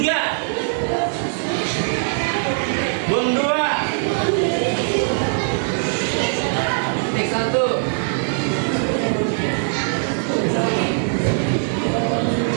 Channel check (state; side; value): silent; left; digital silence